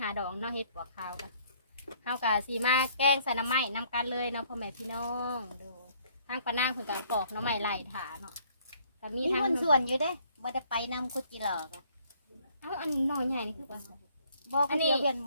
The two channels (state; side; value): inverted; both; correlation -0.62